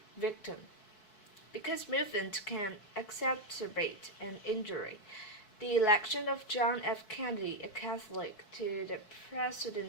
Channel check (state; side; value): late; right; 4.6 ms